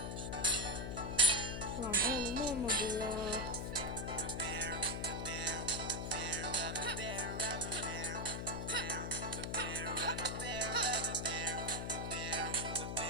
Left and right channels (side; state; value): left; noise; hum, 4 dB below the sound